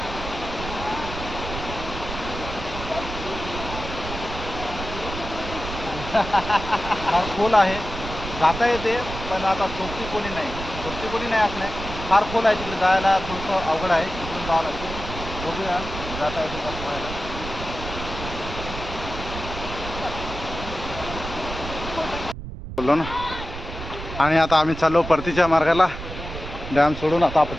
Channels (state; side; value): noise; right; rumble, 9 dB below the sound